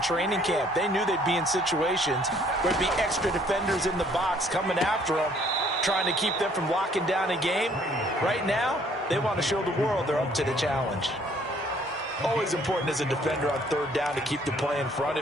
training camp. They knew they'd be in situations where there'd be extra defenders in the box coming after them, trying to keep them from locking down a game. Right now, they want to show the world they're up to the challenge. Always important as a defender on 3rd down to keep the play in front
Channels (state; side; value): normal; both; correlation 0.61